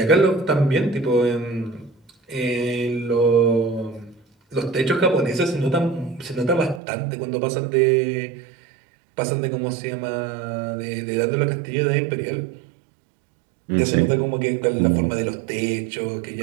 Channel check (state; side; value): drops out; left; at 6.8 s